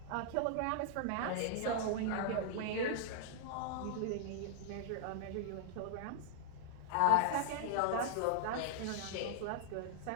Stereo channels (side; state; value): both; different; correlation -0.01